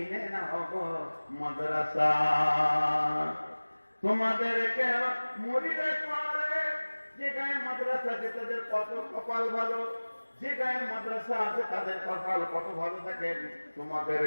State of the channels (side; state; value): both; inverted; correlation -1.00